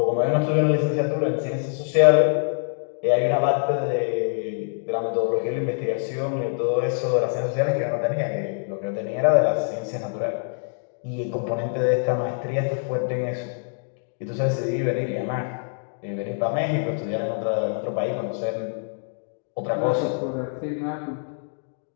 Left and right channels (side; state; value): right; silent; 62 dB below the other